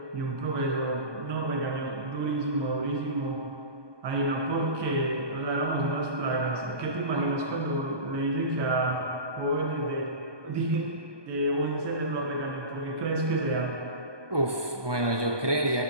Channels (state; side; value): late; left; 1.2 ms